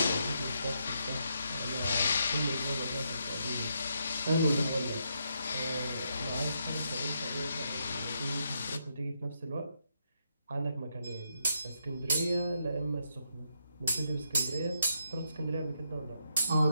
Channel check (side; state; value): both; inverted; correlation -0.79